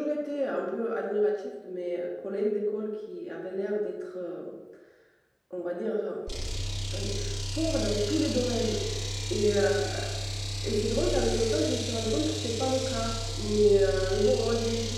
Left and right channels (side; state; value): both; identical; correlation 1.00